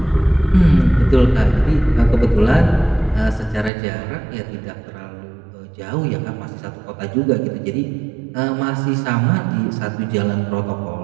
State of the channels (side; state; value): left; drops out; at 3.7 s